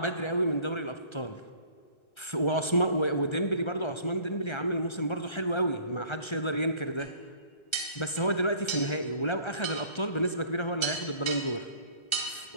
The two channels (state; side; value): late; right; 1.3 ms